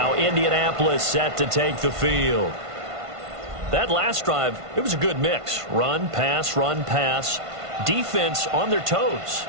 Indianapolis set to take the field. That last drive, it was a good mix. Run, pass, defense on their toes.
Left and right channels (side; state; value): left; late; 1.5 ms